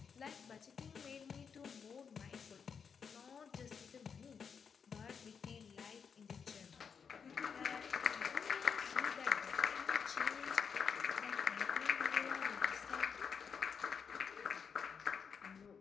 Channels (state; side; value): quieter; right; 6.4 dB